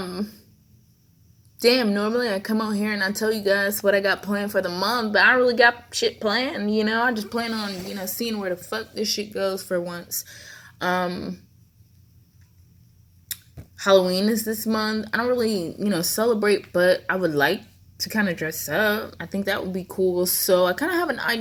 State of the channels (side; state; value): both; identical; correlation 1.00